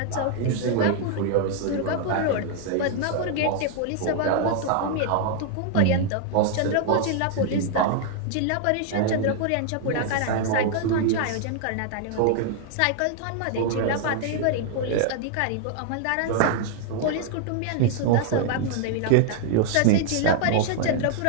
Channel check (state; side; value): different; both; correlation 0.00